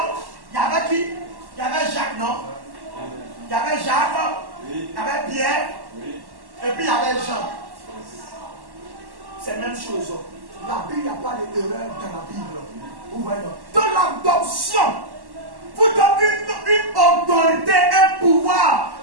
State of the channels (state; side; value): late; left; 1.1 ms